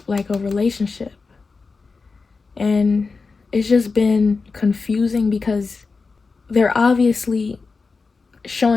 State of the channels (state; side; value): quieter; right; 4.4 dB